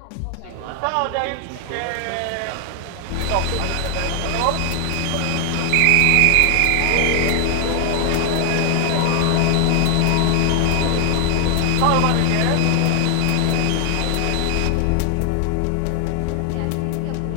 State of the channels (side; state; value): both; different; correlation 0.00